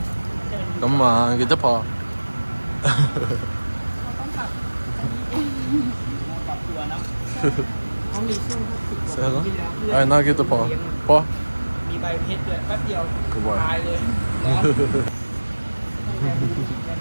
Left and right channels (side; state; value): both; inverted; correlation -1.00